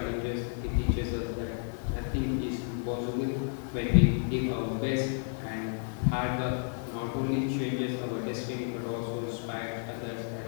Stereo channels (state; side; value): silent; right; 57 dB below the other